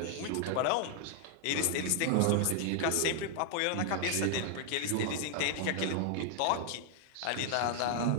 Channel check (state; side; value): different; both; correlation 0.00